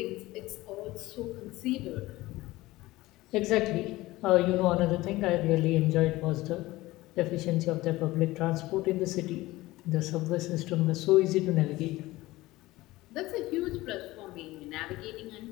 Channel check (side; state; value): right; quieter; 18.7 dB